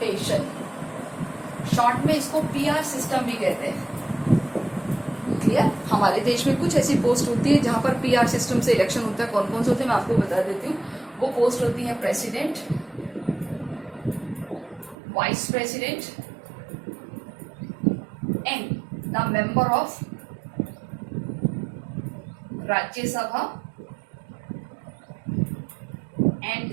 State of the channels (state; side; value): drops out; left; at 15.0 s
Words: Short में इसको PR सिस्टम भी कहते हैं. क्लियर. हमारे देश में कुछ ऐसी पोस्ट होती है जहां पर PR सिस्टम से इलेक्शन होता है. कौन कौन से होते हैं मैं आपको बता देती हूँ. वो पोस्ट होती है president, vice president and the member of Rajya Sabha and